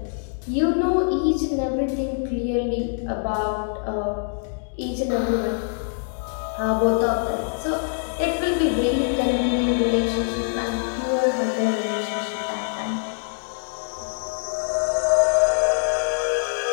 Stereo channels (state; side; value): silent; right; digital silence